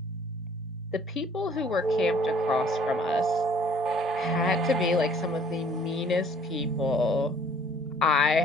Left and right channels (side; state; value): both; normal; correlation 0.57